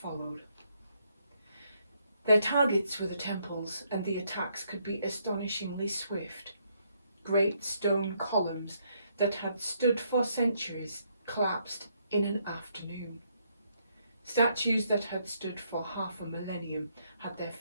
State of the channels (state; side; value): inverted; both; correlation -0.73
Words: followed. Their targets were the temples, and the attacks could be astonishingly swift. Great stone columns that had stood for centuries collapsed in an afternoon. Statues that had stood for half a millennium had their